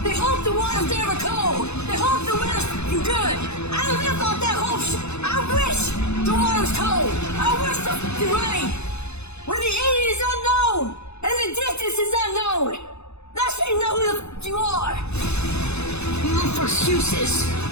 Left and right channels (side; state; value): right; late; 0.81 ms